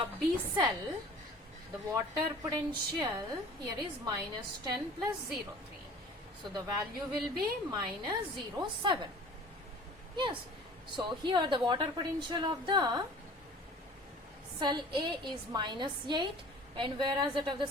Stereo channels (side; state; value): both; normal; correlation 0.45